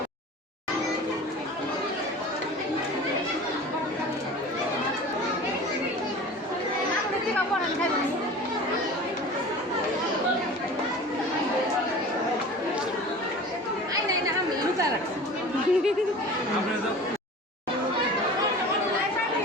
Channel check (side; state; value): both; normal; correlation 0.38